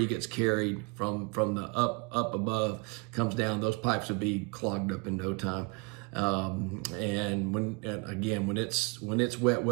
gets carried from the up above, comes down. Those pipes would be clogged up in no time. And when it's wet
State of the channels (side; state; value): left; quieter; 29.6 dB